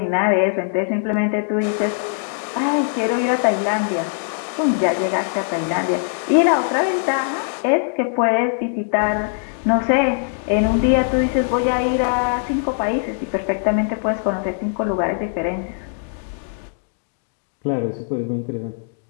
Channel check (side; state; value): right; silent; 63 dB below the other